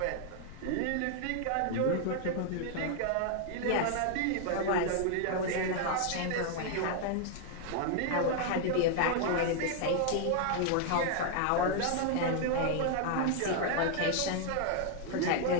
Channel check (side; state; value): both; different; correlation 0.00